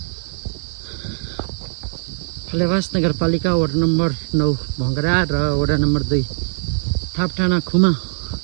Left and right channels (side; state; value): left; silent; digital silence